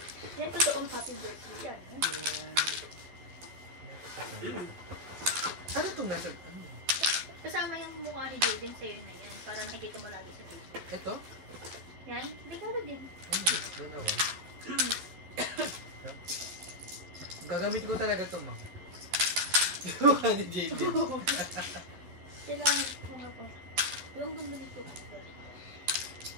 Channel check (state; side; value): late; left; 12 ms